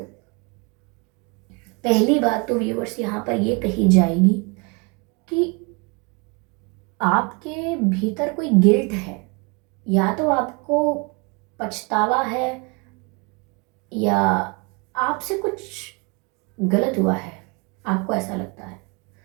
पहली बात तो व्यूअर्स यहाँ पर ये कही जाएगी कि आपके भीतर कोई गिल्ट है, या तो आपको पछतावा है या आपसे कुछ गलत हुआ है। आपको ऐसा लगता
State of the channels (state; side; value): quieter; left; 30.9 dB